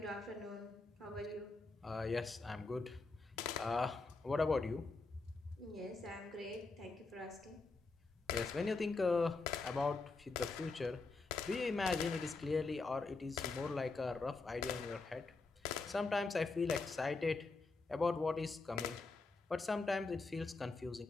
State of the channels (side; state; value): right; quieter; 3.8 dB